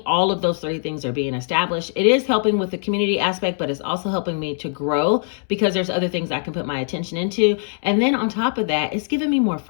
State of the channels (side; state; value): right; silent; 65 dB below the other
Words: all of those 3 things are being established. It is helping with the community aspect, but it's also helping me to grow because there's other things I can put my attention into. And then on top of that, it's giving me more